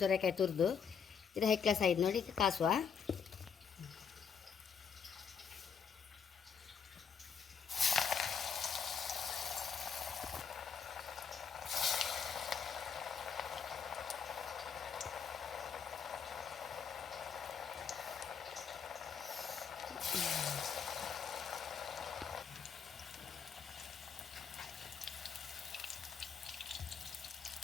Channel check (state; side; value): quieter; right; 6.7 dB